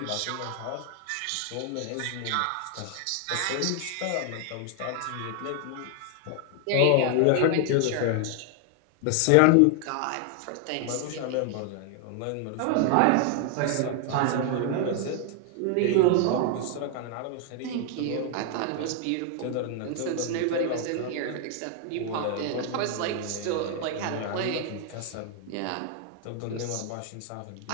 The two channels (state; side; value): different; both; correlation 0.00